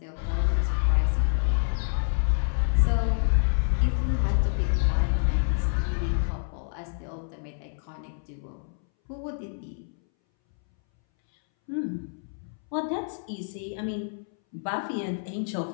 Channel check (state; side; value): silent; right; 60 dB below the other